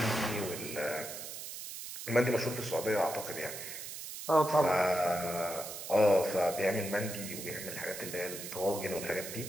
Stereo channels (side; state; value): right; noise; hiss, 9 dB below the sound